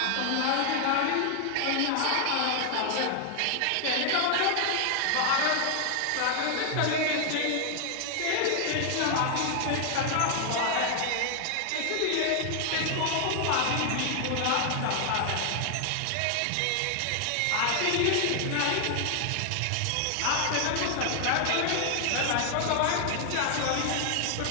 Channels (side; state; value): both; different; correlation 0.00